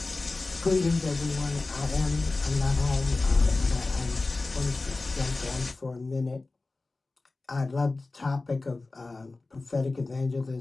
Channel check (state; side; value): quieter; right; 3.4 dB